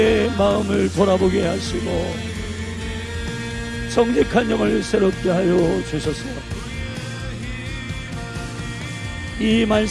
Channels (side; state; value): both; identical; correlation 1.00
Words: 마음을 돌아보게 하시고 정직한 영을 새롭게 하여 주소서. 이